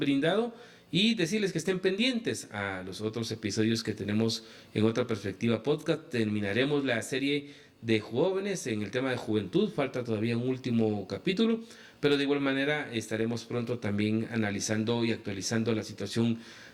brindado y decirles que estén pendientes a los otros episodios que tenemos en Otra Perspectiva Podcast. Terminaremos la serie de jóvenes en el tema de juventud, falta todavía un último capítulo, pero de igual manera estaremos pronto también analizando y actualizando la situación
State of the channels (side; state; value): both; identical; correlation 1.00